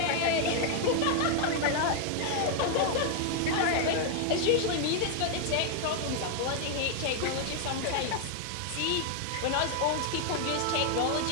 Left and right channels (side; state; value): both; different; correlation 0.00